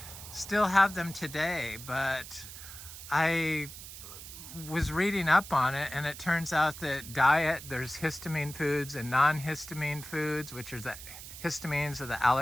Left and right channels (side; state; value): right; noise; hiss, 13 dB below the sound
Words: still have them today. But I was reading up on it, and it turns out that there's histamine foods and non-histamine foods, which are the histamines, or the